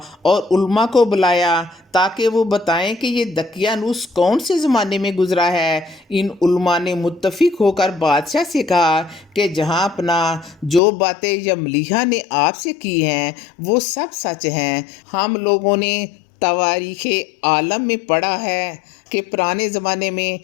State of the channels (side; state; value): right; drops out; at 10.8 s